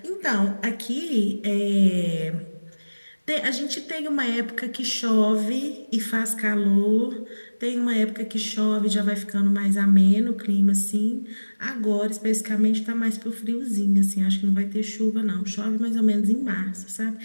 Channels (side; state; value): both; inverted; correlation -1.00